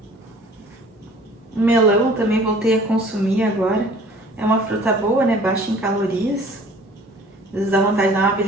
O melão também voltei a consumir agora. É uma fruta boa, né? Baixa em calorias. Às vezes dá vontade de dar uma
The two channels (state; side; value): normal; both; correlation 0.50